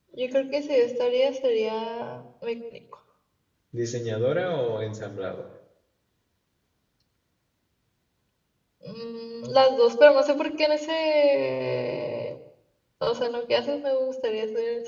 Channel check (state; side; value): identical; both; correlation 1.00